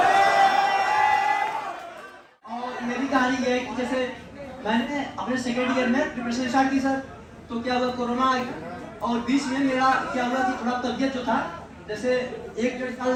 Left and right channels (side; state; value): both; identical; correlation 1.00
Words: कहानी ये है कि जैसे मैंने अपने सेकेंड ईयर में प्रिपरेशन स्टार्ट की सर, तो क्या हुआ कोरोना और बीच में मेरा क्या हुआ कि थोड़ा तबियत जो था जैसे 1-1.5